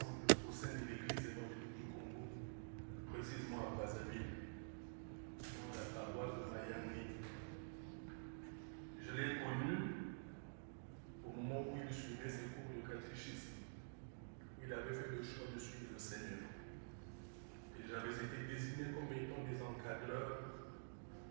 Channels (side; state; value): left; silent; digital silence